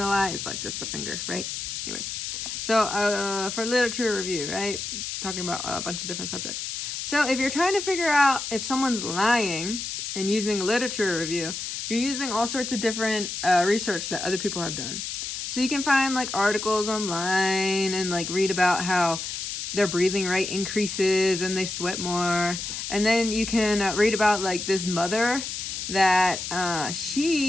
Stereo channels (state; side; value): noise; left; hiss, 5 dB below the sound